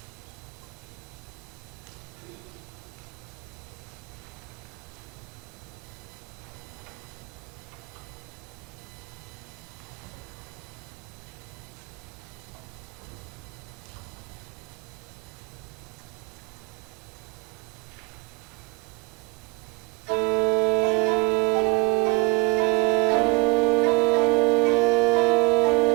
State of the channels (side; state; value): left; quieter; 26.0 dB